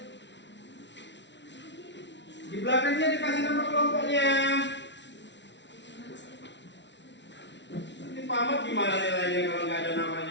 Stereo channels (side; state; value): right; late; 0.52 ms